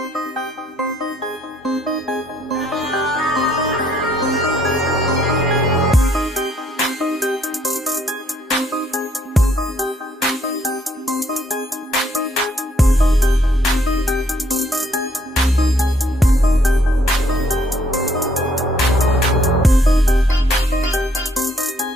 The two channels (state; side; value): normal; both; correlation 0.68